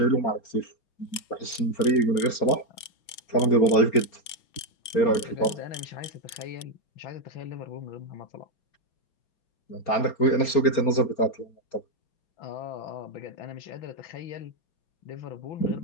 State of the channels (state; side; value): late; right; 4.3 ms